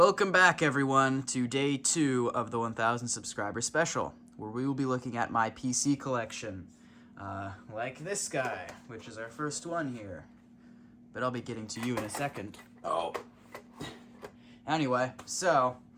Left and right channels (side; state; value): both; identical; correlation 1.00